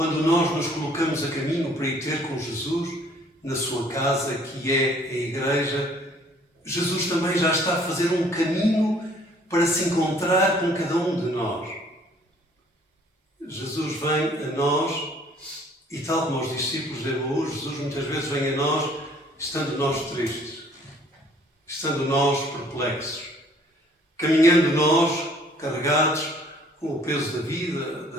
nós nos colocamos a caminho para ir ter com Jesus, na sua casa, que é a igreja, Jesus também já está a fazer um caminho para se encontrar com cada um de nós. Jesus vem a nós e, tal como aos discípulos de Emaús, Jesus muitas vezes vem a nós estando nós tristes, estando nós perplexos, caminhando nós carregados com o peso da vida,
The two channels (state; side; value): normal; both; correlation 0.58